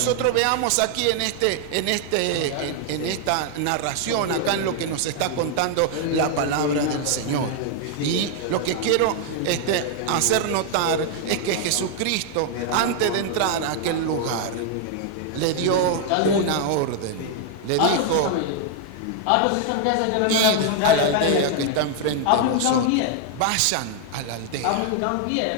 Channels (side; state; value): both; different; correlation 0.00